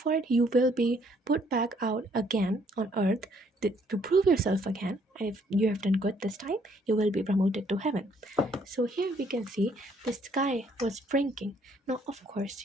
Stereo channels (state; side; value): normal; both; correlation 0.66